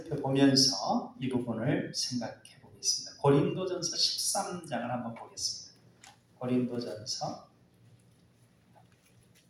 이 부분을 생각해 보겠습니다. 고린도전서 13장을 한번 보겠습니다. 고린도전서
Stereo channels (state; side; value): identical; both; correlation 1.00